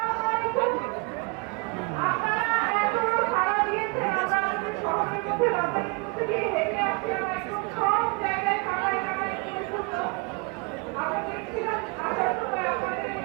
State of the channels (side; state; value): left; quieter; 29.1 dB